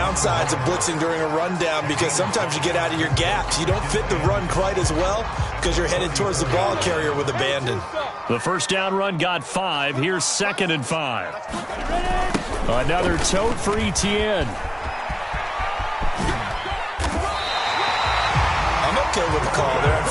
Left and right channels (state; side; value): identical; both; correlation 1.00